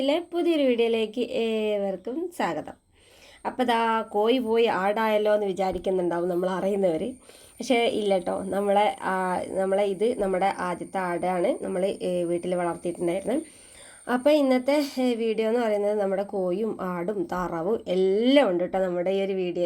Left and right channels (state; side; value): identical; both; correlation 1.00